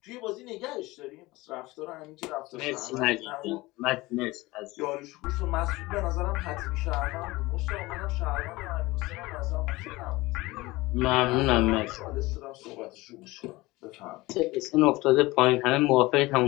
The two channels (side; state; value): right; quieter; 20.7 dB